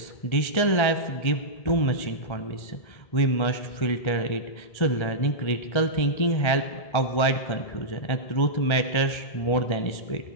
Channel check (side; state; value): right; late; 1.3 ms